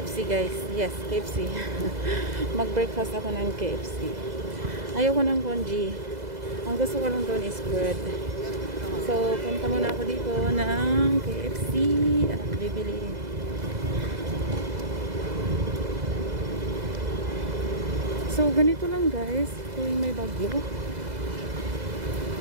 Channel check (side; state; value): left; late; 2.0 ms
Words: guys. Yes, KFC. Mag-breakfast ako ng KFC. Ayoko ng congee. Ang gusto ko lang doon is bread. So, punta muna ako dito ng KFC at bibili. So ganito lang guys, tuwing may bagyo,